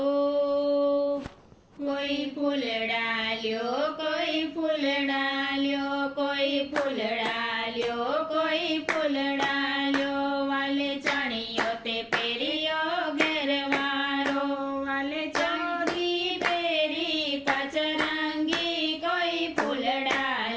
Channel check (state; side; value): identical; both; correlation 1.00